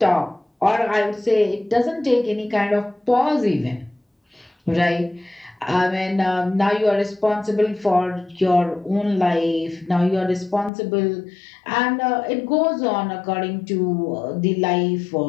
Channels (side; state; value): right; drops out; at 10.7 s